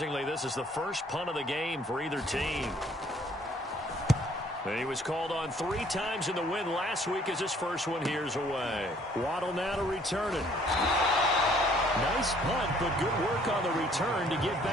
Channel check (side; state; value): both; normal; correlation 0.60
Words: this is the first punt of the game for either team. And he was called on 3 times in the win last week as his first one here's away. Waddle now to return it. Nice punt, but good work on the return to get